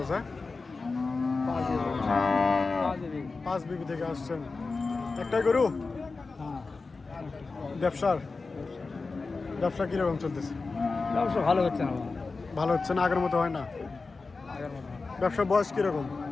5 বিবি থেকে আসছেন। একটাই গরু? ব্যবসা কিরকম চলতেছে? ব্যবসা ভালো হচ্ছে না। ভালো হচ্ছে না, আগের মতো হয় না। আগের মতো ব্যবসার বয়স কিরকম?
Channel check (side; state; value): right; quieter; 4.0 dB